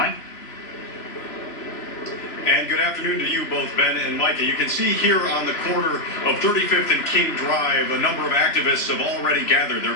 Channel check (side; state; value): right; late; 3.0 ms